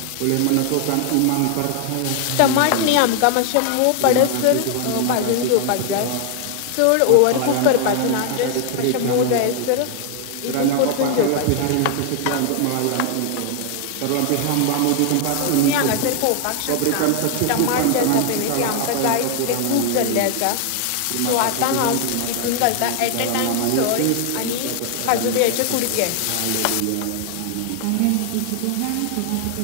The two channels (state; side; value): different; both; correlation 0.00